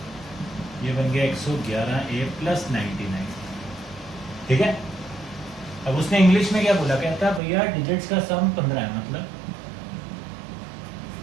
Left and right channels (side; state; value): left; drops out; at 7.4 s